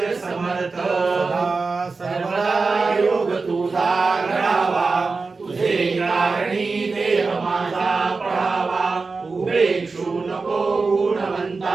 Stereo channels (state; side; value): quieter; left; 4.2 dB